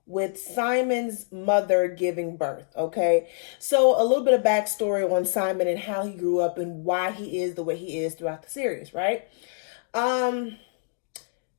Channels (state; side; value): silent; right; digital silence